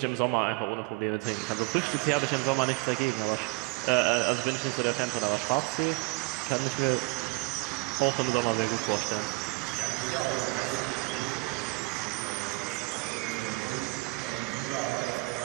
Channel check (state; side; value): quieter; left; 26.3 dB